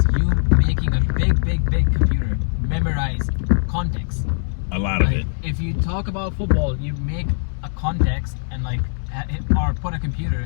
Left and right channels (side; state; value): right; silent; 62 dB below the other